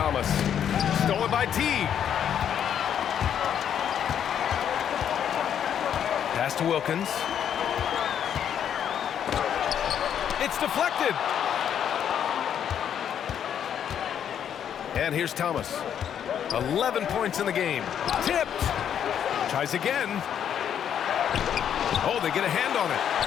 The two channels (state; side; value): quieter; right; 9.1 dB